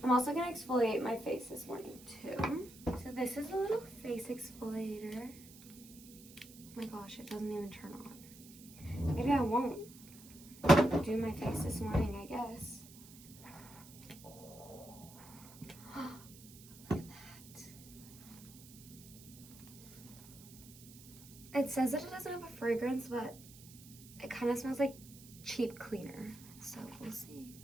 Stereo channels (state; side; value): noise; right; hiss, 19 dB below the sound